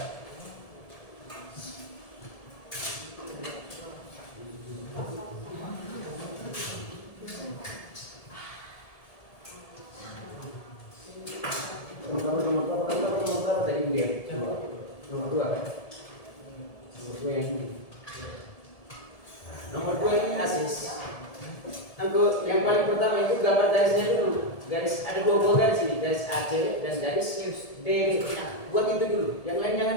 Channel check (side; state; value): right; late; 1.7 ms